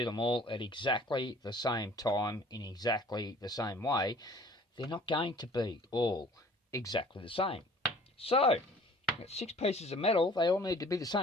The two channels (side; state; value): both; normal; correlation 0.51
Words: them all at exactly the same time in exactly the same way, they're not going to be all exactly the same. So, I've got 6 pieces of metal, they all need to be the